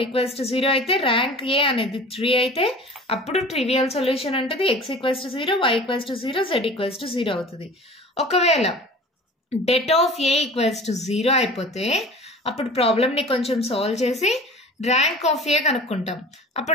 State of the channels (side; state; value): both; normal; correlation 0.41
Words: equals to 0 అయితే, ర్యాంక్ ఏ అనేది 3 అయితే అప్పుడు ట్రివియల్ సొల్యూషన్ ఉంటుంది. x equals to 0, y equals to 0, z equals to 0 అవుతుంది. ఒకవేళ debt of A equals to 0 అయిపోతే అప్పుడు ప్రాబ్లమ్ ని కొంచెం సాల్వ్ చేసి ర్యాంక్ ఆఫ్ ఏ కనుక్కుంటాం.